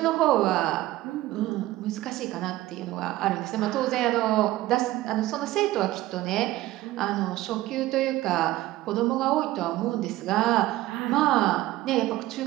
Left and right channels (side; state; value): left; quieter; 16.5 dB